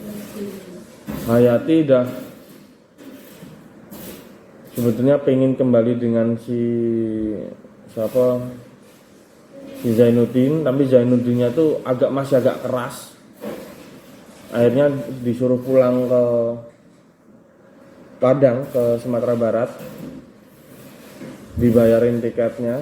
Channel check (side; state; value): both; identical; correlation 1.00